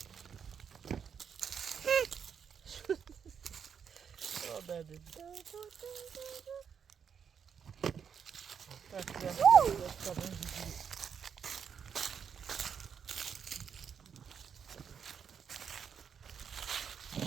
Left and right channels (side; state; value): left; quieter; 7.2 dB